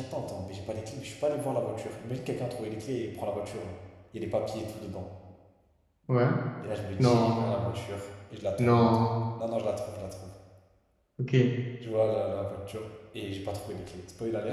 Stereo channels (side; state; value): both; identical; correlation 1.00